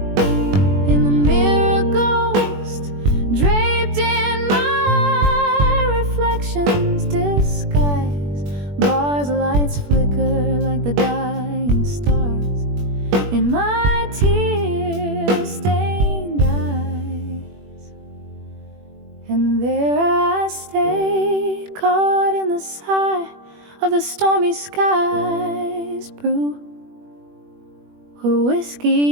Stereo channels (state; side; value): late; left; 21 ms